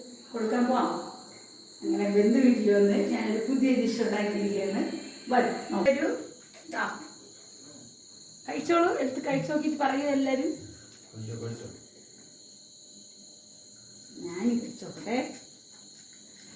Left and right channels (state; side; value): identical; both; correlation 1.00